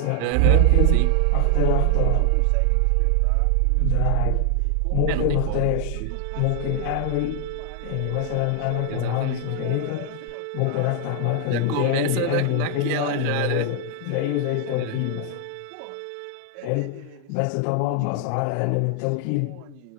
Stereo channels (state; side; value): different; both; correlation 0.00